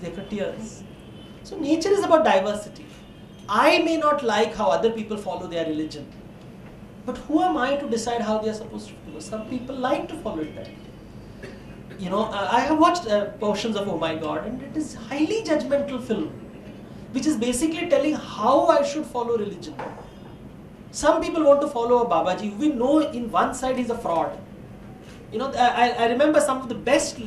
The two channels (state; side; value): identical; both; correlation 1.00